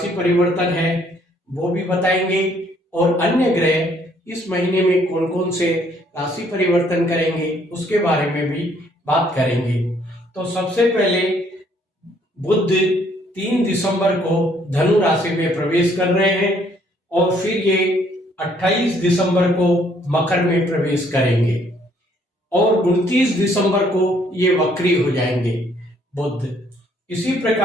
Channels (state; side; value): normal; both; correlation 0.65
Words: परिवर्तन है वो भी बताएंगे और अन्य ग्रह इस महीने में कौन कौन से राशि परिवर्तन करेंगे उसके बारे में भी बात करेंगे। तो सबसे पहले बुध 3 दिसंबर को धनु राशि में प्रवेश कर रहे हैं और फिर ये 28 दिसंबर को मकर में प्रवेश करेंगे और 29 दिसंबर को ये वक्री हो जाएंगे बुध। इसी